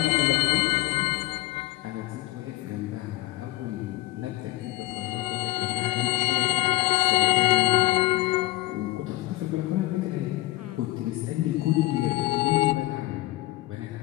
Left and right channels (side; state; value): right; quieter; 18.8 dB